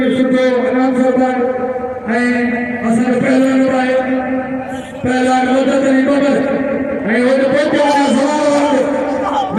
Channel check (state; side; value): identical; both; correlation 1.00